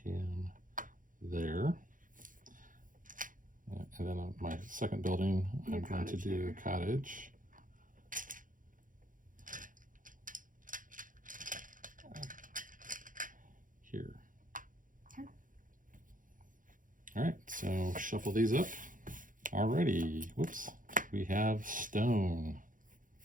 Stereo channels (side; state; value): left; late; 0.39 ms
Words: him there. And then on my second building, I'm going to do a cottage. Here. Okay. All right, so shuffle these up. Alrighty, whoops, we have stone.